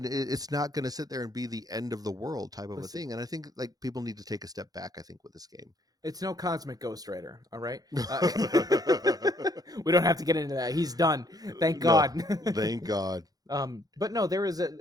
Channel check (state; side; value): late; left; 0.18 ms